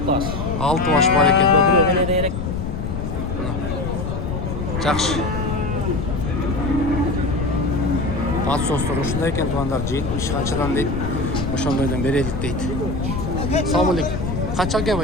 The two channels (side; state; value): left; noise; rumble, 3 dB below the sound